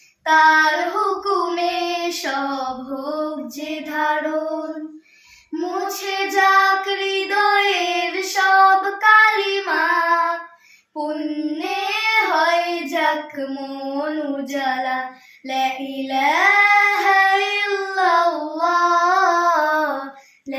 তার হুকুমে সব হোক যে ধারণ। মুছে যাক হৃদয়ের সব কালিমা, পুণ্যে হয় যাক মন উজালা। লা ইলাহা ইল্লাল্লাহ,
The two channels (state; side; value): identical; both; correlation 1.00